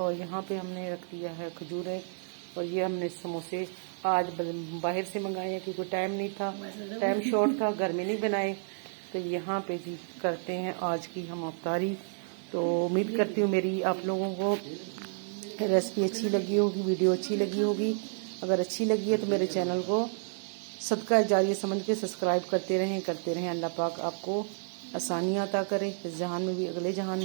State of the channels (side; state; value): left; silent; digital silence